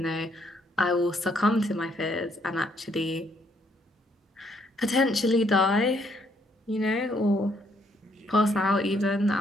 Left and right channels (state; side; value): normal; both; correlation 0.70